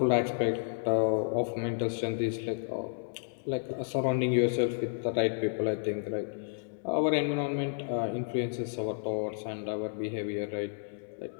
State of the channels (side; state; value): right; silent; digital silence